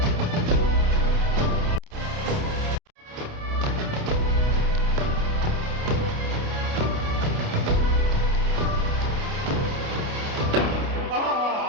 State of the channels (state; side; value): late; left; 29 ms